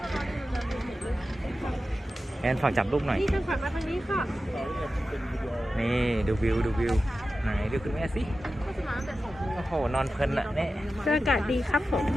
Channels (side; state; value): both; normal; correlation 0.93